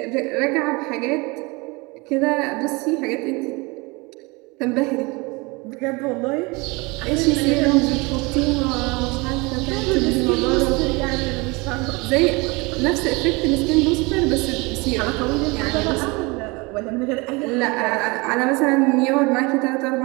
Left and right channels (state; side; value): quieter; left; 26.2 dB